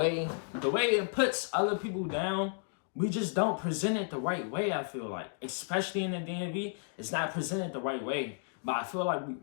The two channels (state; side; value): silent; right; digital silence